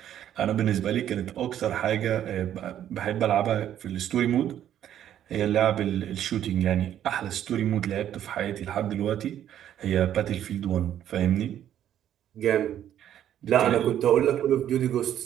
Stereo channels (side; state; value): left; quieter; 10.8 dB